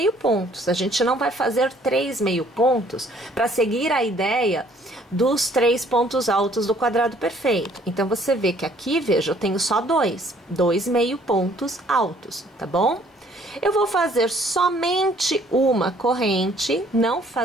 pontos. A gente não vai fazer 3 meio pontos para seguir a ideia dos 3 pontos altos do quadrado perfeito. Então, você vê que aqui, veja, eu tenho só 2 meio pontos altos, tá bom? Eu vou fazer somente uma corrente, não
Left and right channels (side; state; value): both; normal; correlation 0.60